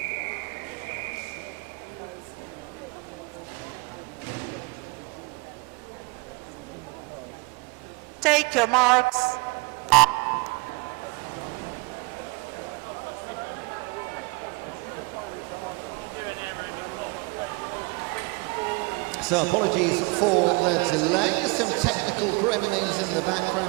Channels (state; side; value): quieter; left; 27.8 dB